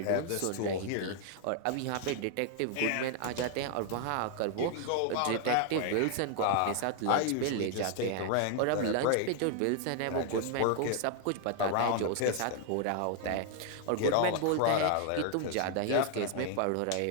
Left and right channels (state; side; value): different; both; correlation 0.00